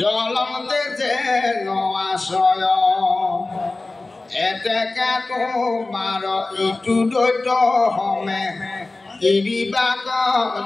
যেন আশ্ৰয় এতেকে তোমাৰ ইটো দৈত্য হমে এৰিবাক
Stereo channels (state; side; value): quieter; right; 3.2 dB